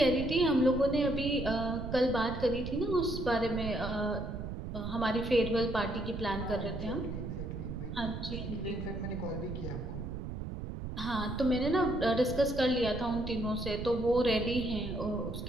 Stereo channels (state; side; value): noise; right; rumble, 6 dB below the sound